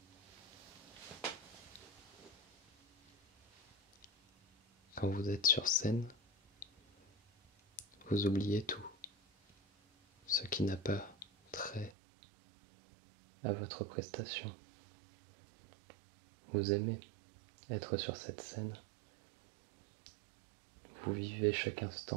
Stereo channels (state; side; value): drops out; left; at 11.9 s